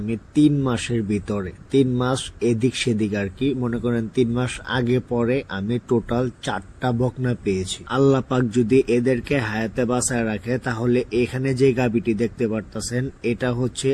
3 মাসের ভিতরে, 3 মাস এদিক সেদিক আর কি, মনে করেন 3 মাস আগে পরে আমি টোটাল 4টা বকনা পেয়েছি। আল্লাহ পাক যদি এদেরকে হায়াতে বাঁচায় রাখে তাহলে এখানে যে গাভীটি দেখতে পারতেছেন এটা হচ্ছে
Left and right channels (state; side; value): identical; both; correlation 1.00